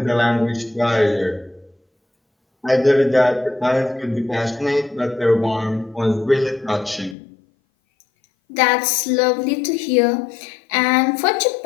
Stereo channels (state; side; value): drops out; right; at 7.2 s